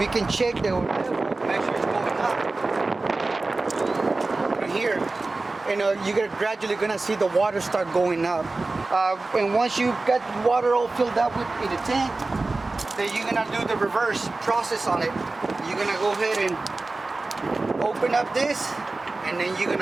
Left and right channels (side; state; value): left; quieter; 3.4 dB